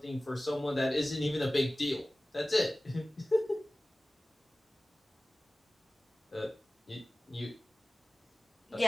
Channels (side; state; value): both; normal; correlation 0.97